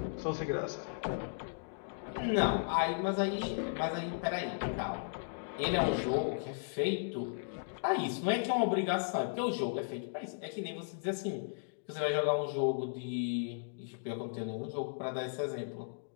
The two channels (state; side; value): silent; right; digital silence